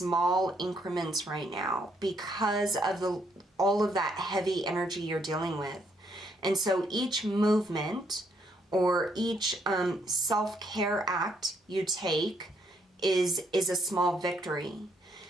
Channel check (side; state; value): both; normal; correlation 0.72